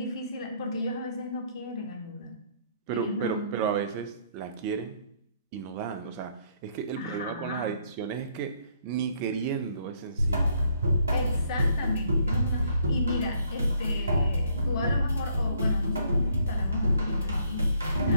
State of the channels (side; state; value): both; inverted; correlation -0.67